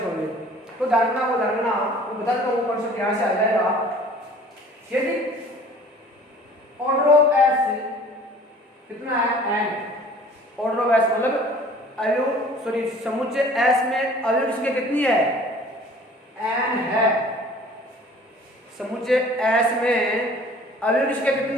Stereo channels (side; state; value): both; normal; correlation 0.49